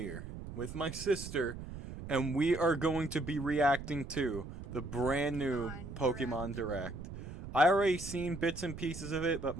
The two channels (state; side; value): noise; right; rumble, 10 dB below the sound